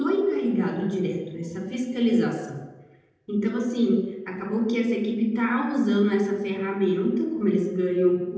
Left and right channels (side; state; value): both; identical; correlation 1.00